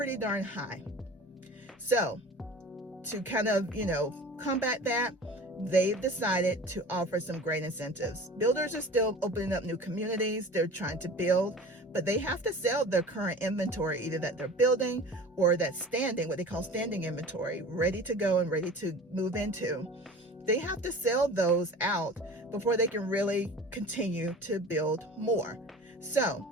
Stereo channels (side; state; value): both; normal; correlation 0.39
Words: darn high. So to kind of, combat that, they've decided to offer some great incentives. Builders are still opening up new communities. They're trying to build, but they have to sell their current inventory, either that they're building or that's standing, what they call standing inventory, ready to go and ready to move into. They have to sell those out before they can really continue to build more.